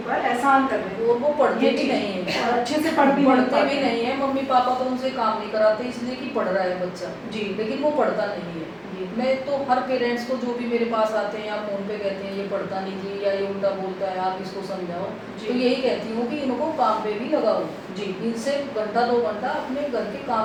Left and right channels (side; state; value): both; identical; correlation 1.00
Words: एहसान कर रहे हैं और वो पढ़ते ये भी चीज़। नहीं है और अच्छे से पढ़ भी नहीं पढ़ते पाते। भी नहीं है मम्मी पापा तो उनसे काम नहीं कराते इसलिए कि पढ़ रहा है बच्चा जी लेकिन वो पढ़ता नहीं है जी मैं तो हर पेरेंट्स को जो भी मेरे पास आते हैं या फ़ोन पे कहते हैं ये पढ़ता नहीं जी या ये उल्टा बोलता है आप इसको समझाओ जी। तो यही कहती हूँ कि इनको काम पे भी लगाओ जी इनसे घंटा 2 घंटा अपने घर के